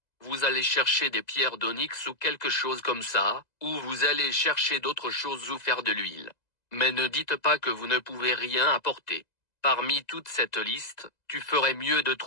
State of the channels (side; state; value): right; late; 2.0 ms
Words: Vous allez chercher des pierres d'onyx ou quelque chose comme ça, ou vous allez chercher d'autres choses ou faire de l'huile. Mais ne dites pas que vous ne pouvez rien apporter. Parmi toute cette liste, tu ferais mieux de